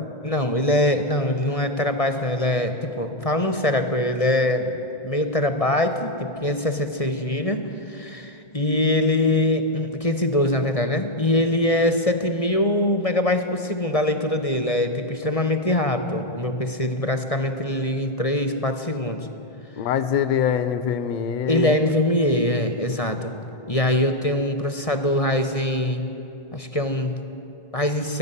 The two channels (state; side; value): late; right; 1.6 ms